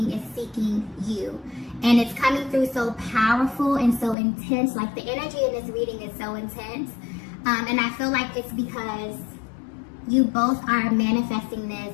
is seeking you, and it's coming through so powerful and so intense. Like, the energy in this reading is so intense, and I feel like it's because you both are manifesting this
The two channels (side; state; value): right; drops out; at 4.2 s